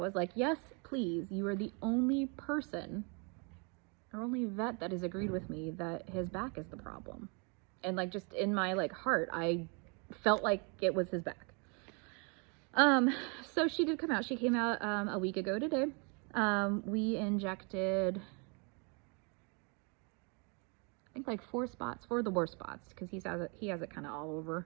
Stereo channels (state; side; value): quieter; left; 34.5 dB